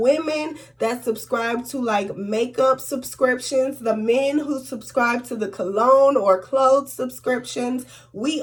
that subscribe to like makeup subscriptions, the men who subscribe to the cologne or clothes subscriptions, we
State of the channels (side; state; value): both; identical; correlation 1.00